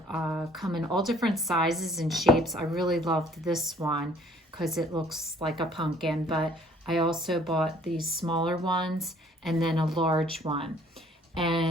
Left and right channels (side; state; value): both; normal; correlation 0.58